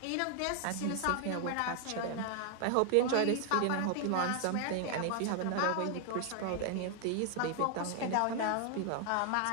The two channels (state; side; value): different; both; correlation 0.00